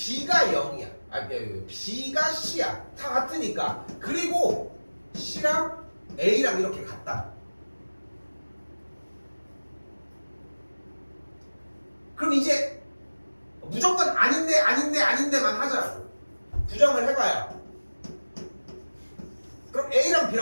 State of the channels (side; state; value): both; inverted; correlation -1.00